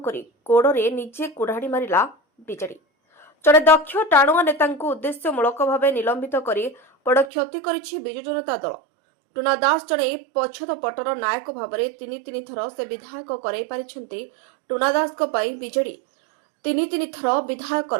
गोड़े निजे कुढ़ाड़ी मारिला विजेडी। जड़े दक्ष टाणुआ नेता उद्देश्यमूलक भाव निलंबित कर बड़ क्षति करिछि विजु जनता दल। टुना दास जड़े पछद पटर नायक भाव में तीन थर से विधायक कराई पारिछन्ति। टुना दास विजेडी तीन थर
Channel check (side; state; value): left; drops out; at 7.3 s